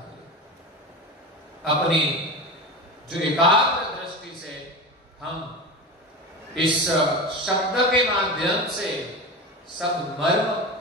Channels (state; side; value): normal; both; correlation 0.26